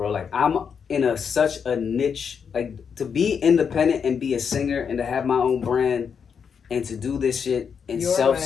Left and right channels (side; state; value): right; quieter; 6.7 dB